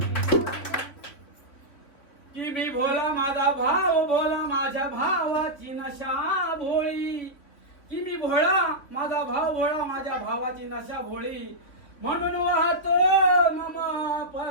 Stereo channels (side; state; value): right; late; 3.7 ms